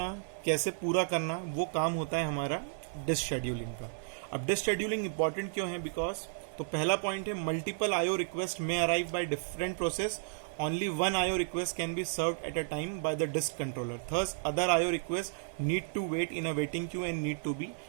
कैसे पूरा करना, वो काम होता है हमारा डिस्क शेड्यूलिंग का। अब डिस्क शेड्यूलिंग इंपॉर्टेंट क्यों है, बिकॉज तो पहला पॉइंट है, मल्टीपल आईओ रिक्वेस्ट में arrive by different process, only one IO request can be served at a time by the disk controller. Thus, other IO requests need to wait in a waiting queue and need to be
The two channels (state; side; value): silent; left; 56 dB below the other